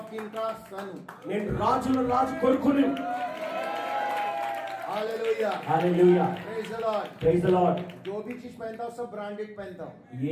किंग का सन हूँ. నేను రాజుల రాజు కొడుకుని. Hallelujah. Hallelujah. Praise the Lord. Praise the Lord. जो भी चीज पहनता हूँ सब ब्रांडेड पहनता हूँ.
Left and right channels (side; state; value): both; identical; correlation 1.00